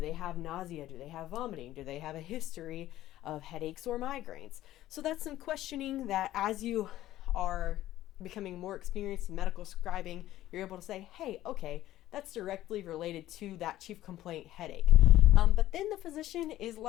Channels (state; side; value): quieter; right; 14.3 dB